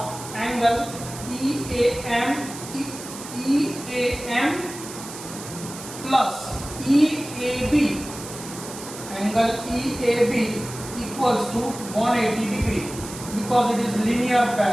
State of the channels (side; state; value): right; noise; hiss, 12 dB below the sound